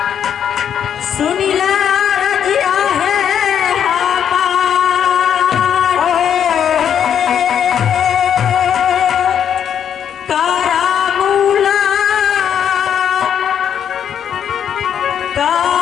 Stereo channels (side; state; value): right; quieter; 8.8 dB